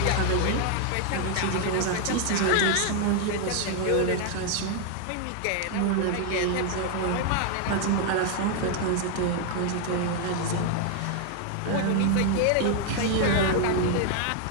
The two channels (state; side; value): different; both; correlation 0.00